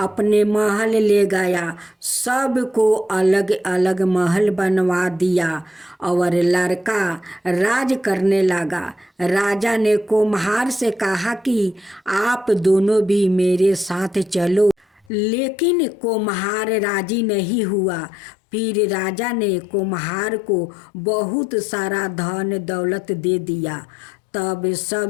महल ले गया। सबको अलग अलग महल बनवा दिया और लड़का राज करने लगा। राजा ने कुम्हार से कहा कि आप दोनों भी मेरे साथ चलो, लेकिन कुम्हार राजी नहीं हुआ। फिर राजा ने कुम्हार को बहुत सारा धन दौलत दे दिया। तब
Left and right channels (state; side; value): drops out; right; at 15.1 s